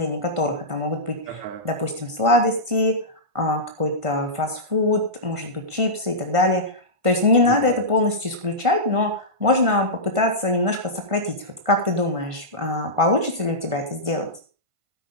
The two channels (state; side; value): late; left; 1.5 ms